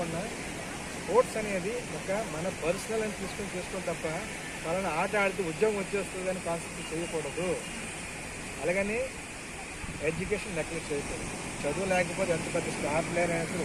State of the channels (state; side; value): identical; both; correlation 1.00